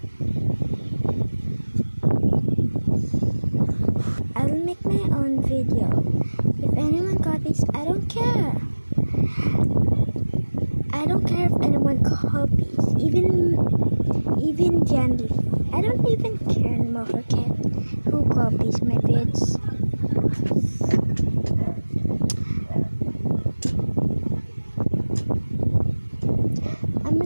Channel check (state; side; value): inverted; both; correlation -1.00